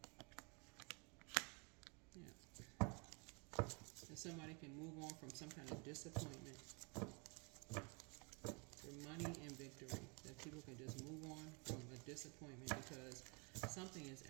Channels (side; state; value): left; quieter; 32.4 dB